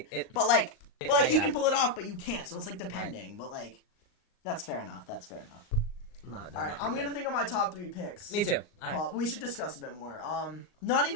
but like, he yeah. can pull it off, but you can't. So it's like depending. But like, that's fair enough. No, All right, I'm gonna think of my top 3 picks. Me too. All right. We should discuss a bit more. Not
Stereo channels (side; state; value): right; late; 38 ms